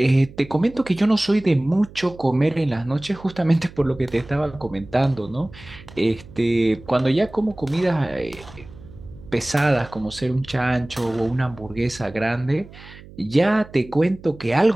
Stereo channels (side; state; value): right; noise; hum, 19 dB below the sound